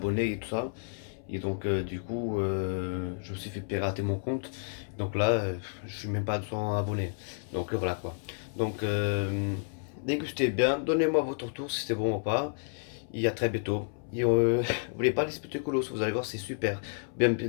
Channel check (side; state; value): right; silent; 57 dB below the other